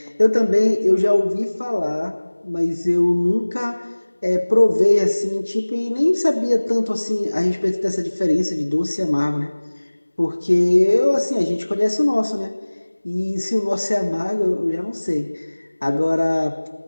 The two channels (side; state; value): both; inverted; correlation -1.00